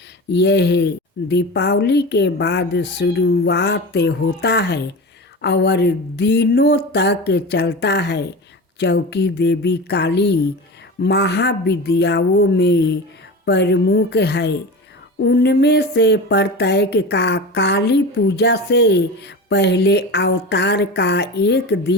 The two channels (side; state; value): both; normal; correlation 0.29